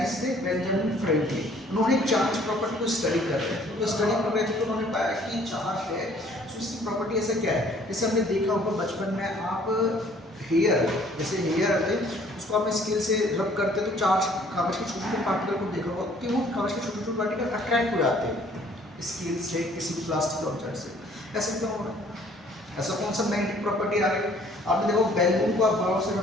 थे बेंजामिन फ्रैंकलिन, उन्होंने चार्ज प्रॉपर्टी को स्टडी कर रहे थे, तो स्टडी कर रहे थे तो उन्होंने पाया कि चार्ज है तो उसकी प्रॉपर्टी ऐसा क्या है, जैसे हमने देखा होगा बचपन में, आप हेयर, जैसे हेयर आते उसको आप स्केल से रब करते तो चार्ज, कागज के छोटे छोटे पार्टिकल को देखा होगा कि वो कागज के छोटे छोटे पार्टिकल अट्रैक्ट हो जाते हैं स्केल से, किसी भी प्लास्टिक ऑब्जेक्ट से। ऐसा क्यों हो रहा है, ऐसा कौन सा मैग्नेटिक प्रॉपर्टी आ गई। आपने देखो बैलून को आप बाहर से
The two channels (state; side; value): normal; both; correlation 0.58